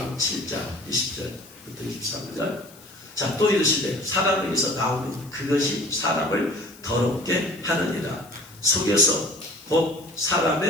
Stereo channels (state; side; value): noise; left; hiss, 23 dB below the sound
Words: 7장 20절부터 23절. 자, 또 이르시되 사람에게서 나오는 그것이 사람을 더럽게 하느니라. 속에서 곧